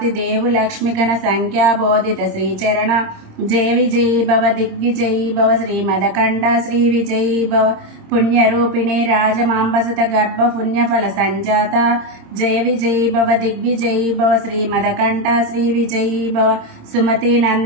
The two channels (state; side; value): late; left; 26 ms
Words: దేవు లక్ష్మిగణ సంఖ్యాబోధిత శ్రీచరణ జయ విజయీ భవ దిగ్విజయీ భవ శ్రీమదకంఠ శ్రీ విజయీ భవ పుణ్యరూపిణి రాజమాంబసత గర్భ పుణ్యఫల సంజాత జయ విజయీ భవ దిగ్విజయీ భవ శ్రీమదకంఠ శ్రీ విజయీ భవ సుమతి